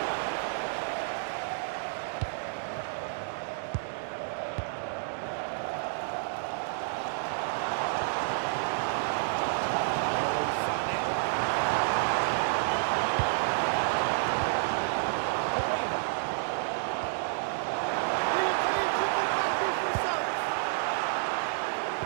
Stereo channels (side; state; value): left; silent; digital silence